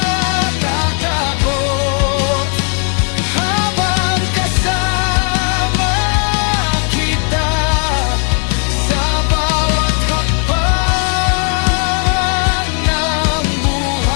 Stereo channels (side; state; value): right; quieter; 39.4 dB